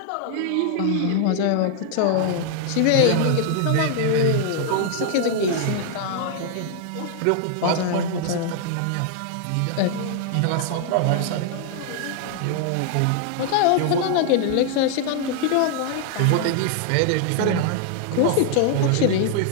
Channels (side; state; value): both; different; correlation 0.00